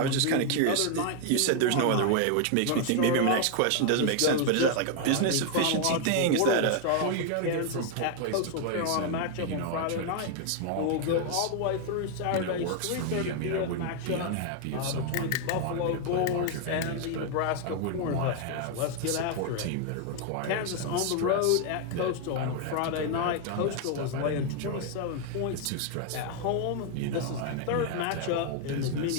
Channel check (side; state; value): both; different; correlation 0.00